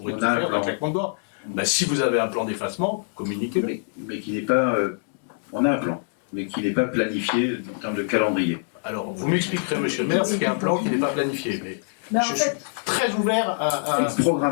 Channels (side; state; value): right; silent; digital silence